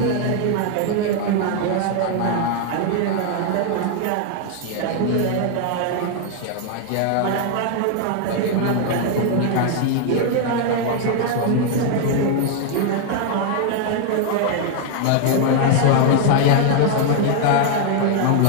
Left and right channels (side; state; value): both; different; correlation 0.00